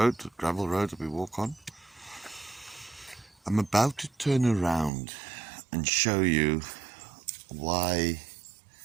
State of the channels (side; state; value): left; drops out; at 4.9 s